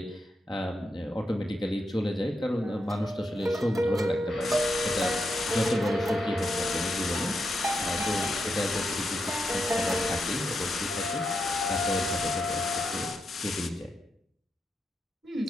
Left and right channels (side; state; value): both; normal; correlation 0.84